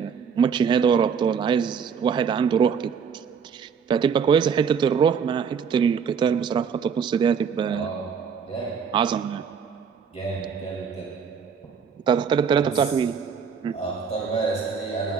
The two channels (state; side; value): quieter; left; 6.7 dB